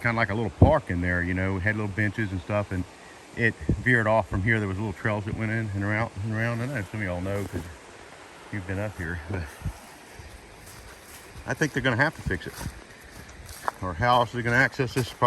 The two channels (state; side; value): identical; both; correlation 1.00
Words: of like a little park in there, you know, it had little benches and stuff, and it veered off from here. There was little trails that went in and around and around. I know some of y'all know because you've been up here, but I think they're going to have to fix it. Or how else are they going to access this